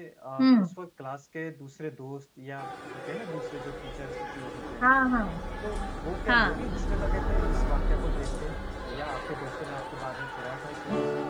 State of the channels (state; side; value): identical; both; correlation 1.00